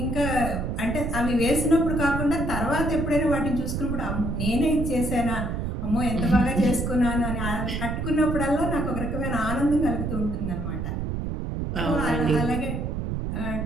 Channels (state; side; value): noise; right; rumble, 2 dB below the sound